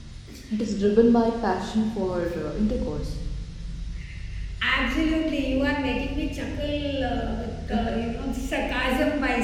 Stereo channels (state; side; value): identical; both; correlation 1.00